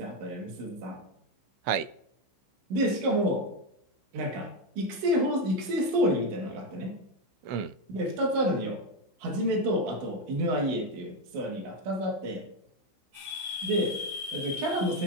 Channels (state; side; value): late; left; 16 ms